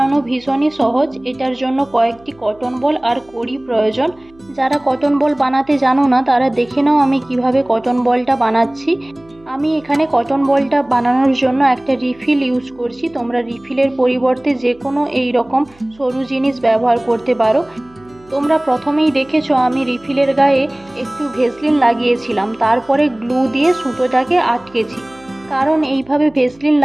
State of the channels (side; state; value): right; noise; hum, 28 dB below the sound